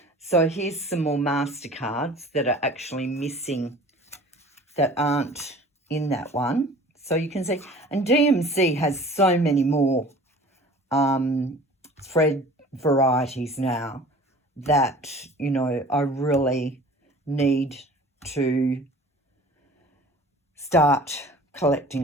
So here's some more MasterCards that are actually missing, that aren't in that one. So you can see, and DMC has so many more thread varieties now that, you know, I really need to start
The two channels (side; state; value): both; normal; correlation 0.45